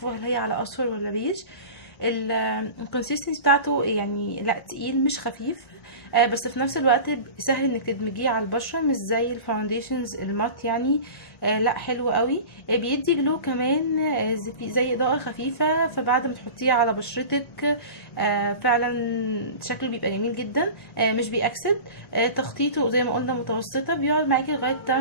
هل هي على اصفر ولا بيج. الكونسيستنسي بتاعته يعني لا تقيل مش خفيف، بس في نفس الوقت سهل انك تدمجيه على البشره، مش زي الفاونديشنز المات يعني. لا حلو قوي. بيدي جلو كمان، زي اضاءه خفيفه، فبعد ما تحطيه على بشرتك فعلا شكله بيبقى جميل جدا. مش بيأكسد. تخطيطه زي ما قلنا متوسطه، بيقعد معاكي لغايه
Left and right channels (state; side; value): late; right; 1.1 ms